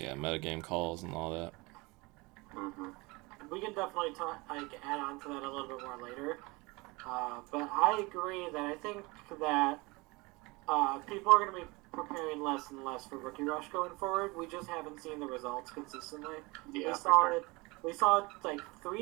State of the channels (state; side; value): quieter; left; 24.9 dB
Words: metagame calls and all that. We can definitely add on to that a little bit more later. But I agree that I think that people are going to be preparing less and less for Rookie Rush going forward. We just haven't seen the results consistently. Yeah, We saw it like